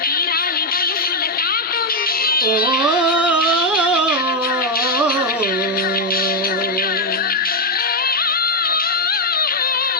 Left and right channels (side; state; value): both; normal; correlation 0.03